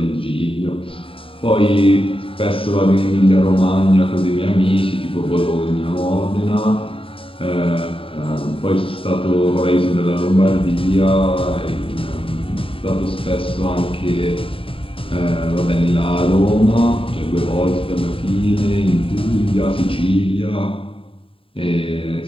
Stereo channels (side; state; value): right; late; 0.26 ms